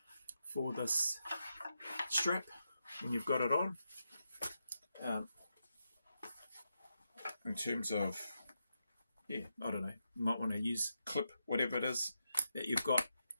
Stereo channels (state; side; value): inverted; both; correlation -0.85